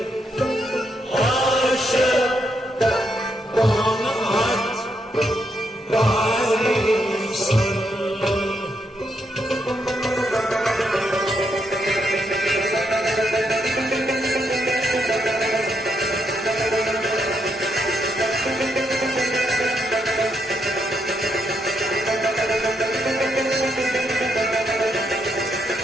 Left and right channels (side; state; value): both; normal; correlation 0.79